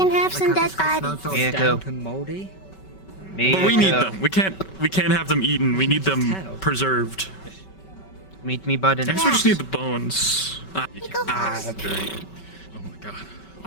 have some dead bodies. Miyako. Damp and moldy. But we need them. We can't have them eaten. We need them preserved. Meet me, bud. I guess we just need the bones. That's very. Oh my God.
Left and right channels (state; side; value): late; right; 5.2 ms